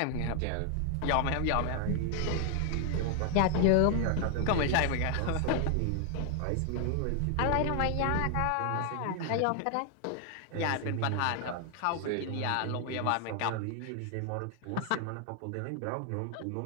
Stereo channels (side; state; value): both; different; correlation 0.00